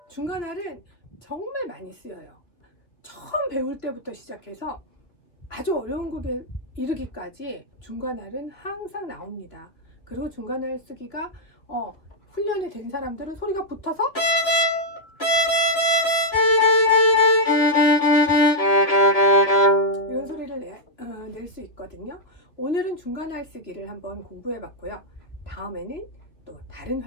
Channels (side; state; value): right; late; 2.7 ms